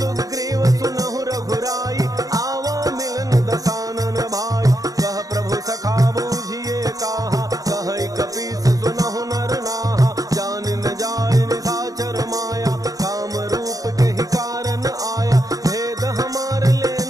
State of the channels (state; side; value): late; left; 0.17 ms